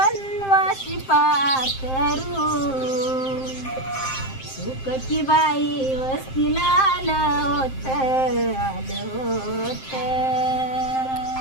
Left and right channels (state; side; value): late; right; 7.6 ms